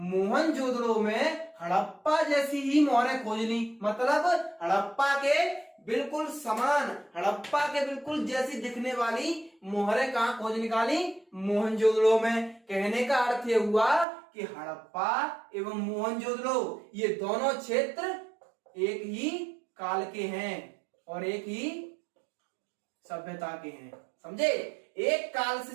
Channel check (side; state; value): left; drops out; at 14.1 s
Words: में हड़प्पा जैसी ही मोहरें खोज ली, मतलब हड़प्पा के बिल्कुल समान, हड़प्पा के बिल्कुल जैसी दिखने वाली मोहरें कहां खोज निकाली? मोहनजोदड़ो में। कहने का अर्थ यह हुआ कि हड़प्पा एवं मोहनजोदड़ो ये दोनों क्षेत्र एक ही काल के हैं और एक ही सभ्यता के हैं, समझे। एक काल